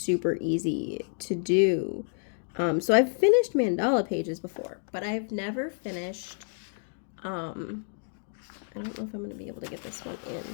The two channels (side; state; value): right; silent; 58 dB below the other